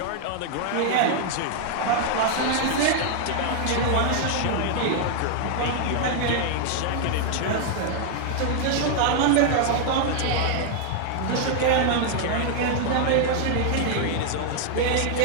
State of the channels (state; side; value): different; both; correlation 0.00